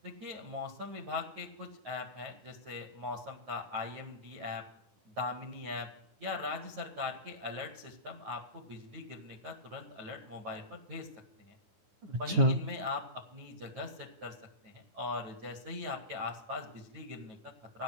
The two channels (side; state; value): left; late; 9.8 ms